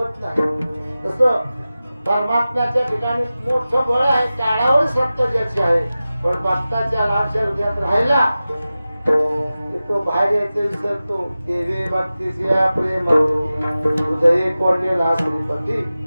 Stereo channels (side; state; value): both; inverted; correlation -0.95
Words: नाही. तसं परमात्म्याच्या ठिकाणी मोठं बळ आहे, टाळावर सत्य ज्याची आहे, पण भक्ताच्या लाडच्या हृदयात राहिला तो बाहेर यायचं विसरतो. देवी भक्तीचे प्रेम हृदय कोंडलेला श्रीपती,